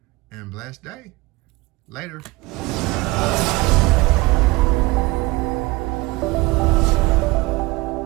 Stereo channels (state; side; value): quieter; left; 21.8 dB